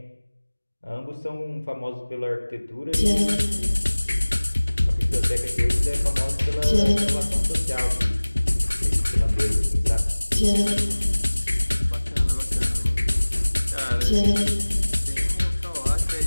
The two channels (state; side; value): inverted; both; correlation -1.00